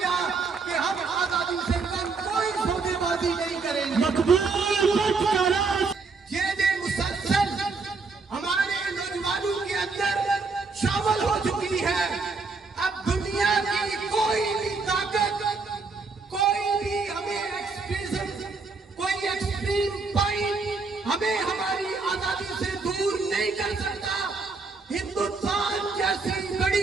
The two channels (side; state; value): left; quieter; 4.3 dB